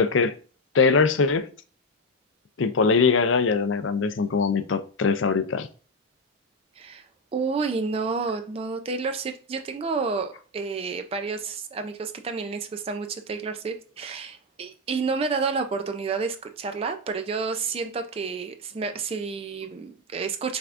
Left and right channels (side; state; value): both; normal; correlation 0.06